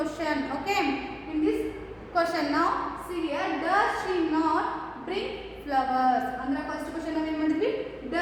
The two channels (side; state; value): both; identical; correlation 1.00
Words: Okay, in this question now see here, does she not bring flowers? ಅಂದ್ರೆ ಫಸ್ಟ್ ಕ್ವಶನ್ ನಾವು ಏನು ಮಾಡಿದ್ವಿ,